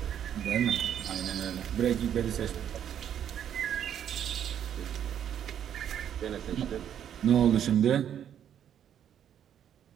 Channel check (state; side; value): quieter; left; 9.6 dB